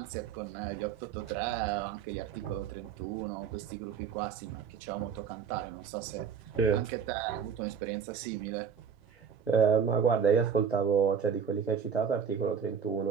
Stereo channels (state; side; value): quieter; left; 6.9 dB